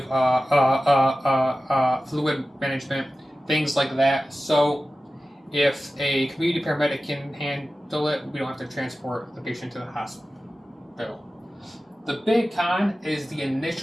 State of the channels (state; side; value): normal; both; correlation 0.95